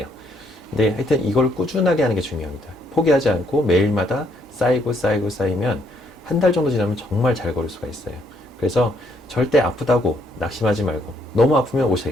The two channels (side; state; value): both; normal; correlation 0.71